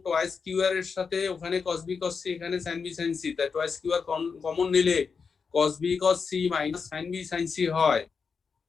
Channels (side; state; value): right; quieter; 5.5 dB